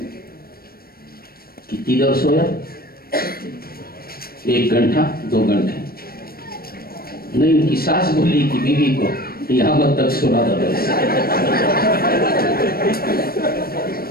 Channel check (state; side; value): late; right; 0.44 ms